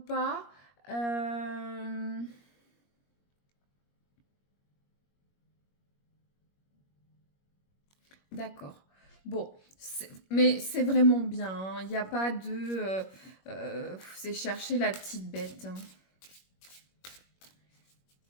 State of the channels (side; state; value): right; late; 21 ms